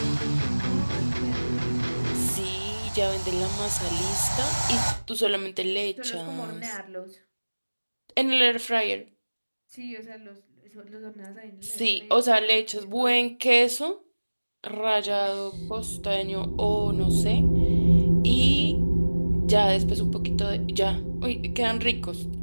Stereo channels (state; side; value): inverted; both; correlation -1.00